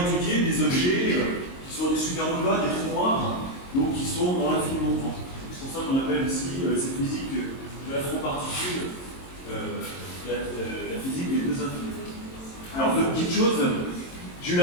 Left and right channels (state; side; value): late; right; 22 ms